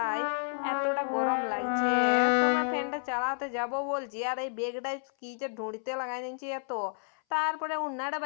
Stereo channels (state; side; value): silent; right; 57 dB below the other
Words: এতটা গরম লাগছে। তোমার ফ্যানটা চালাতে যাব বলছি, আর এই বেগটাই কি যে ঢুঁড়িতে লাগাই দিচ্ছি এত। তারপরে উন্নাটা